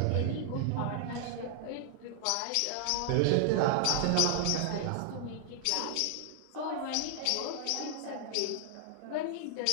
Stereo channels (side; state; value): both; different; correlation -0.01